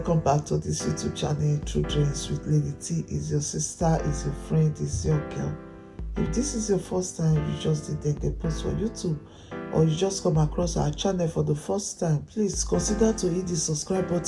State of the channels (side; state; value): both; identical; correlation 1.00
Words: back to this YouTube channel. True Dreams with Lady T. Is your sister, is your friend, is your girl. If this is your first time you just did a post for YouTube, or you just come across our channel for the first time, please consider to hit the subscribe